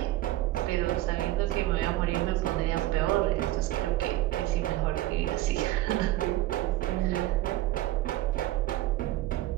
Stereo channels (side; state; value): left; quieter; 15.9 dB